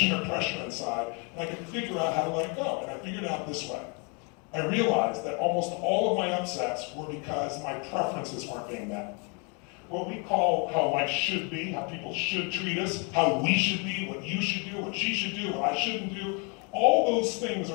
or pressure inside and I could figure out how to let it go? And I figured it out this way. I realized that almost all of my upsets were because my preferences weren't being met. What we call how life should be, how people should treat us, how we should be, what you should do, what she should do, what I shouldn't do, all those things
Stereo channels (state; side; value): quieter; right; 34.6 dB